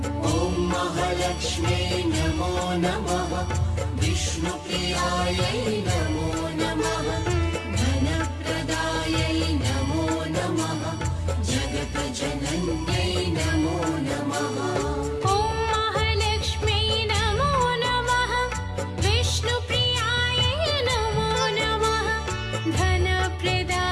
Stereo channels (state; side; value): identical; both; correlation 1.00